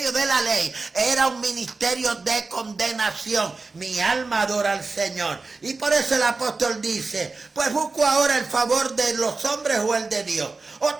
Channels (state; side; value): quieter; left; 3.9 dB